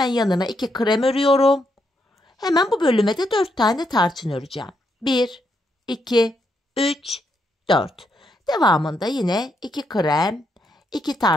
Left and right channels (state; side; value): normal; both; correlation 0.78